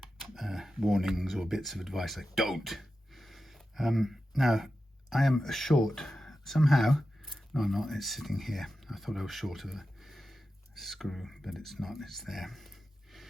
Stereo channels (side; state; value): both; normal; correlation 0.92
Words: warnings or bits of advice like don't. Now I am short somehow. No, I'm not. It's sitting here. I thought I was short of the screw, but it's not. It's there.